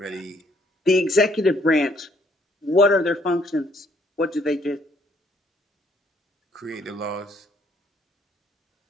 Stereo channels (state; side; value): normal; both; correlation 0.66